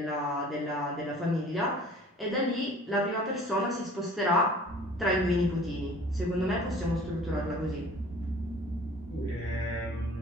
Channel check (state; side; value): normal; both; correlation 0.48